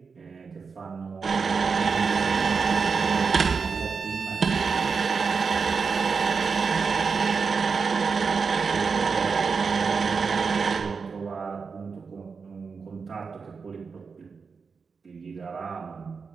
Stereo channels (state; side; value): quieter; left; 5.2 dB